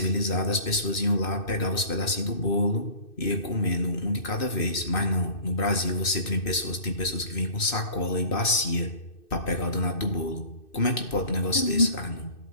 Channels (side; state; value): right; late; 2.6 ms